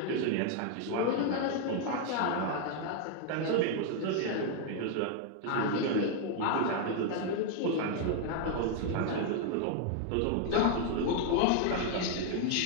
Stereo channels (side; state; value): both; different; correlation 0.00